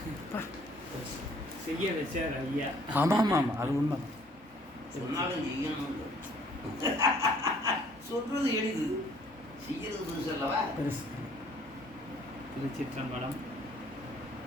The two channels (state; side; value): normal; both; correlation 0.59